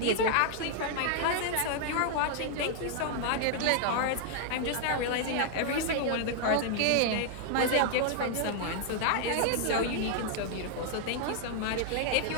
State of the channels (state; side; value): different; both; correlation 0.00